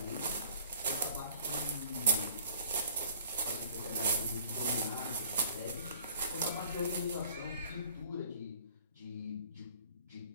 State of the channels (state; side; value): inverted; both; correlation -0.54